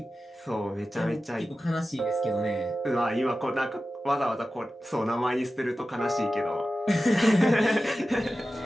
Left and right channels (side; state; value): both; normal; correlation 0.94